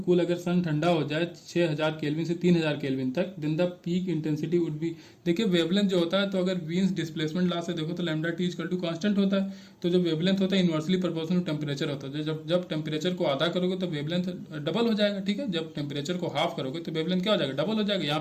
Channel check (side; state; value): both; identical; correlation 1.00